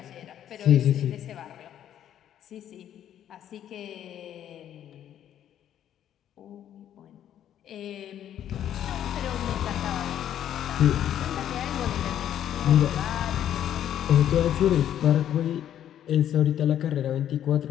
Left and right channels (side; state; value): right; quieter; 10.6 dB